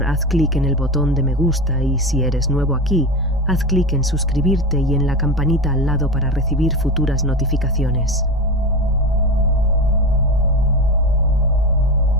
haz clic en el botón de me gusta y si eres nuevo aquí, haz clic en suscribirte y en la campanita al lado para recibir futuras notificaciones.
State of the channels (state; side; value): normal; both; correlation 0.23